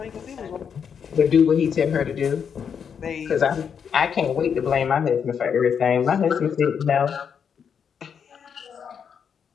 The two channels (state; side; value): quieter; right; 7.2 dB